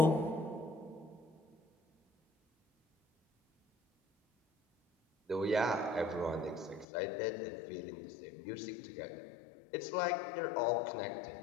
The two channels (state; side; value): drops out; right; at 6.9 s